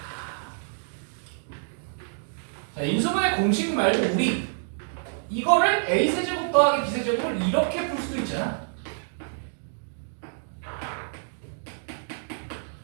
자, 인수분해 공식 말고 우리 이거를 A세제곱 더하기 B세제곱을 이렇게 풀 수도 있잖아.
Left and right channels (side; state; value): left; silent; digital silence